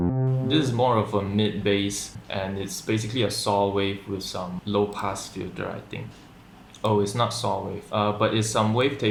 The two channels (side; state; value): both; identical; correlation 1.00